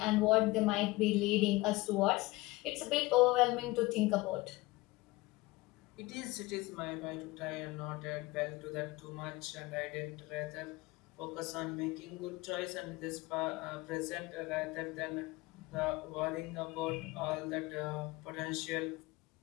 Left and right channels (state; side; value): quieter; right; 21.0 dB